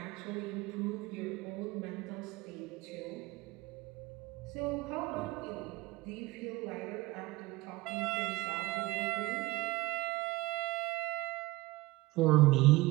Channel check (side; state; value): left; quieter; 20.6 dB